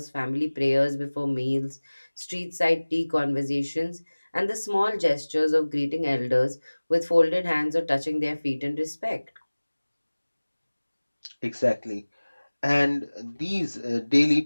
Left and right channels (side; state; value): both; inverted; correlation -1.00